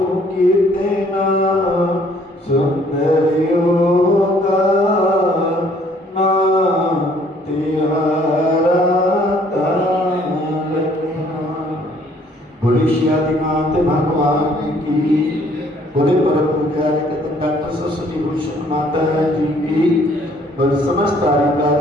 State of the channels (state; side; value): normal; both; correlation 0.61